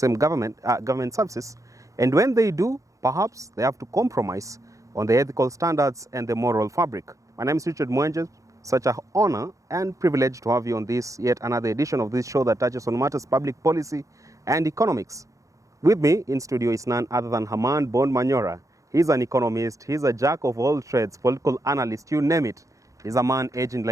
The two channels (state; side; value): late; left; 0.16 ms